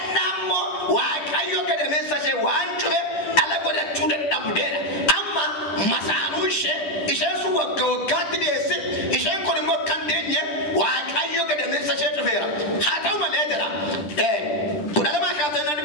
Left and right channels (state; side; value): late; right; 10 ms